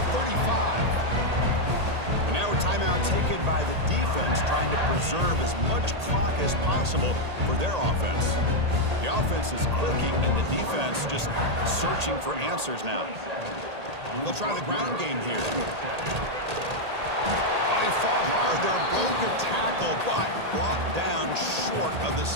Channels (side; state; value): left; late; 1.8 ms